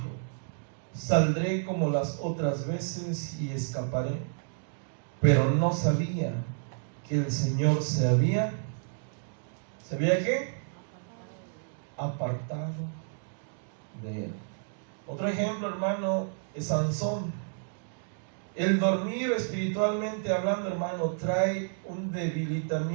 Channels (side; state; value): left; silent; digital silence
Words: saldré como las otras veces y escaparé. Pero no sabía que el Señor ¿se había qué? Apartado de él. Otro ejemplo, hermano, es Sansón. El dormir espiritualmente hablando, hermano, trae un